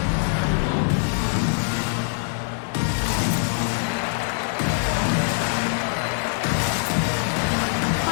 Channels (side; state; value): right; silent; 61 dB below the other